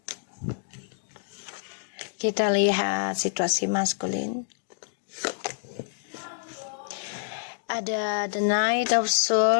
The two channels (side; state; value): right; silent; digital silence